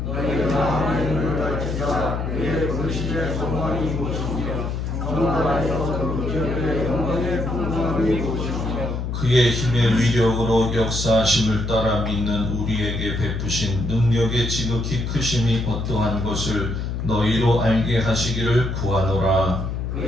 너희 마음의 눈을 밝히사 그의 불신의 소망이 무엇이며 성도 안에서 그 기업의 영광의 풍성함이 무엇이며 그의 힘의 위력으로 역사하심을 따라 믿는 우리에게 베푸신 능력의 지극히 크심이 어떠한 것을 너희로 알게 하시기를 구하노라.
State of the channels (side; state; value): left; noise; hum, 3 dB below the sound